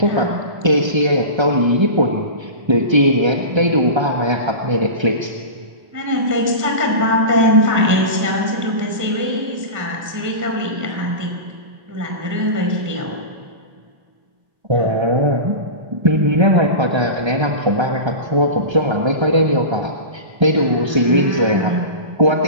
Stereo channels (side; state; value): left; late; 1.3 ms